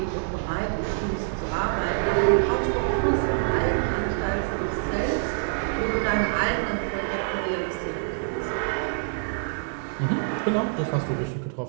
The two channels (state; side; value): silent; left; digital silence